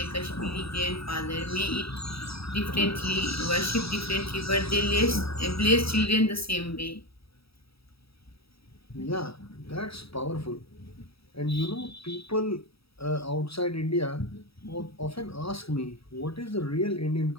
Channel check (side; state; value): right; late; 0.77 ms